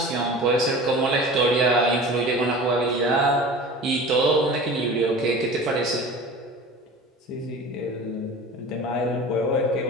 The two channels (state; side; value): normal; both; correlation 0.38